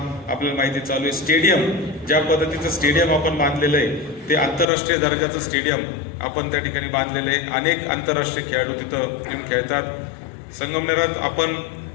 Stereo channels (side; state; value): right; drops out; at 4.7 s